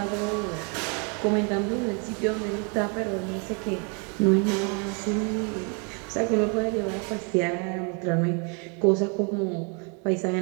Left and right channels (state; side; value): quieter; left; 36.0 dB